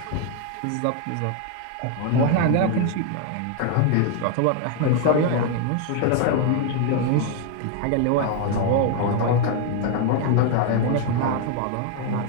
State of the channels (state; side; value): different; both; correlation 0.01